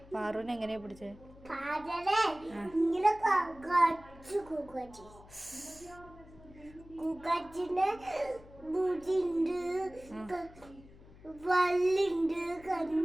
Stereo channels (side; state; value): left; noise; hum, 21 dB below the sound